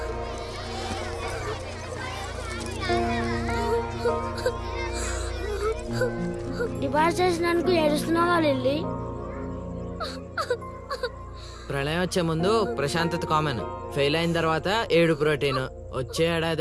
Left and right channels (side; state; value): both; identical; correlation 1.00